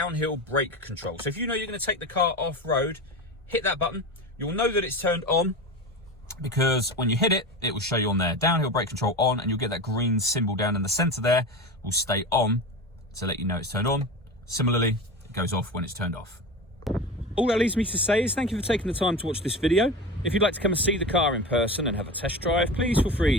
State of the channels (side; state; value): both; normal; correlation 0.27